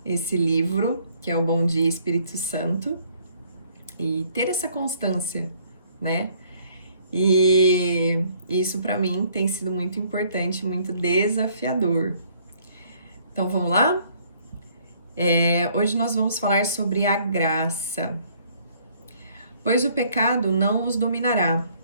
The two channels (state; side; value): inverted; both; correlation -0.62